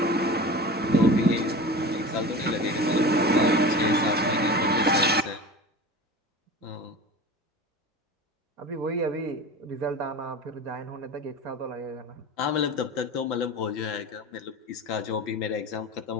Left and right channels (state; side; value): normal; both; correlation 0.33